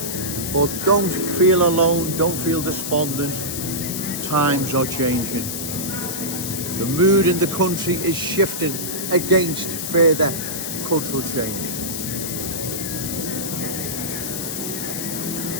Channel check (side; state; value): left; noise; hiss, 4 dB below the sound